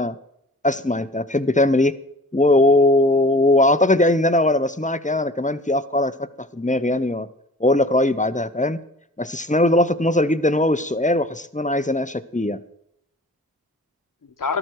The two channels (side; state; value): both; normal; correlation 0.44